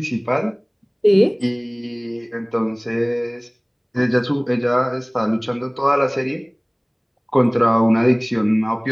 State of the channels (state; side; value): identical; both; correlation 1.00